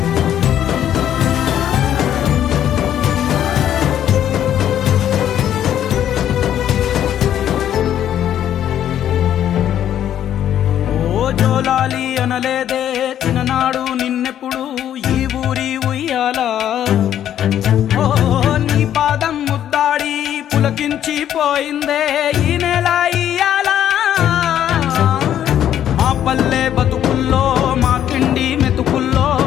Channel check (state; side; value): quieter; right; 10.7 dB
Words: ఓ జోలాలి అనలేదే చిన్ననాడు నిన్నెప్పుడు ఈ ఊరి ఉయ్యాలా ఓ నీ పాదం ముద్దాడి పులకించి పోయిందే ఈ నెల ఇయ్యాలా మా పల్లె బతుకుల్లో మా తిండి మెతుకుల్లో